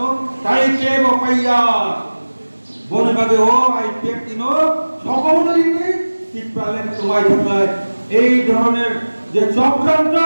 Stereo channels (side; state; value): both; inverted; correlation -1.00